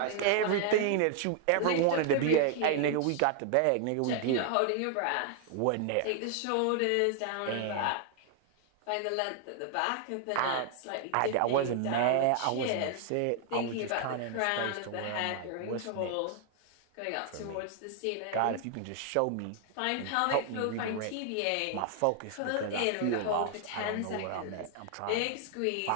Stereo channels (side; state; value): both; different; correlation 0.00